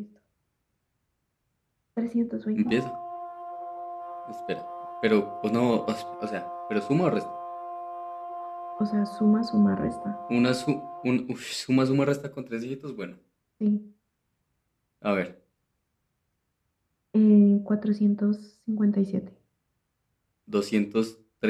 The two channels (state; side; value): identical; both; correlation 1.00